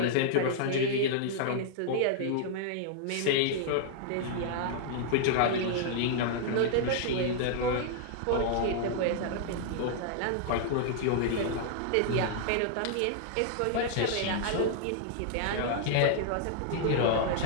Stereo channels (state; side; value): different; both; correlation -0.01